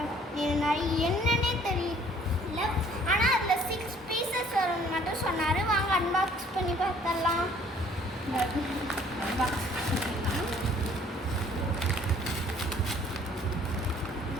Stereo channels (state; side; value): normal; both; correlation 0.58